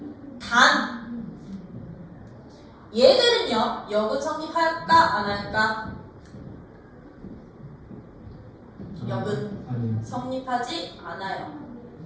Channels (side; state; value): both; identical; correlation 1.00